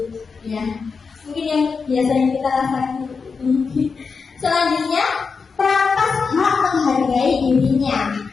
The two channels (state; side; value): quieter; right; 5.1 dB